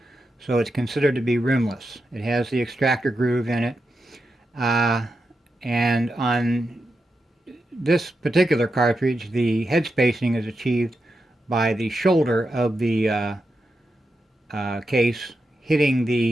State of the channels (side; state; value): both; normal; correlation 0.87